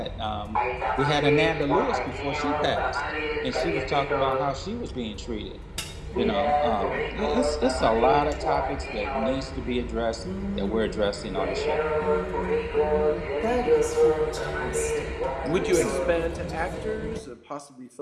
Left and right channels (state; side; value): identical; both; correlation 1.00